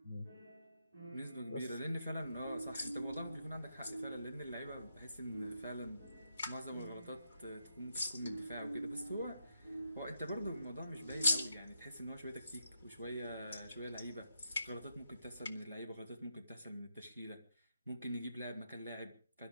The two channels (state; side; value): inverted; both; correlation -0.82